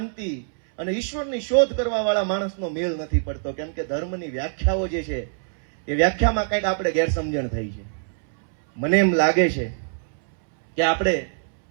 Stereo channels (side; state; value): left; silent; 63 dB below the other